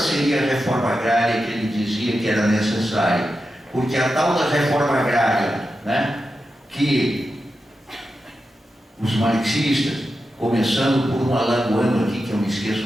a reforma agrária que ele dizia que era necessária, porque a tal da reforma agrária, né, que os marxistas, começando por um alagoano aqui, que eu me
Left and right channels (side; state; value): both; normal; correlation 0.90